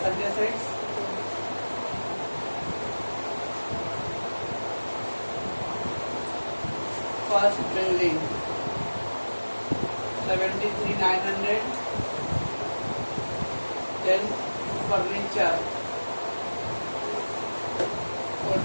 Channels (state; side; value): inverted; both; correlation -1.00